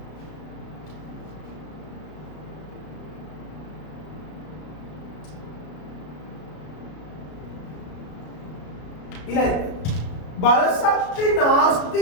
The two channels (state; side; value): late; right; 33 ms